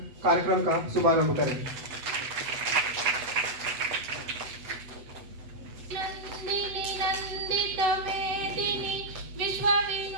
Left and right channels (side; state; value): left; late; 8.0 ms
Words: कार्यक्रम का शुभारंभ करें। नंदिनी नंदित मेदिनी विश्व